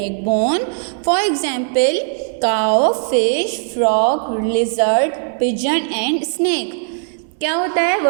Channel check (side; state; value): left; silent; digital silence